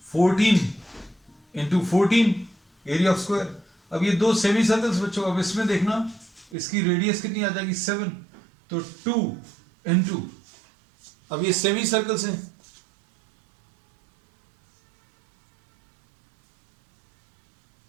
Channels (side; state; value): left; drops out; at 6.6 s